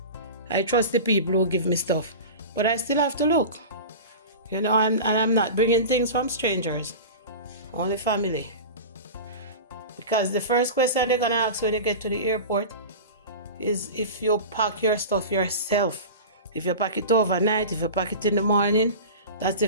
I trust the people who give me stuff. But I still have to look. You know, and I'm not bringing things from strangers. Only family. Because the first question they're going to ask when you get to the airport is if you pack your stuff yourself. If you pack it overnight, if you pack it in the morning, that's the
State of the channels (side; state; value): both; inverted; correlation -0.31